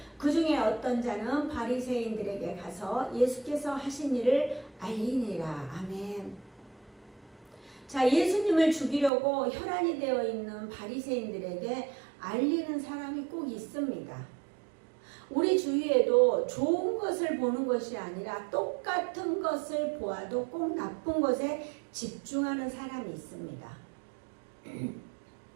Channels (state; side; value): drops out; left; at 9.1 s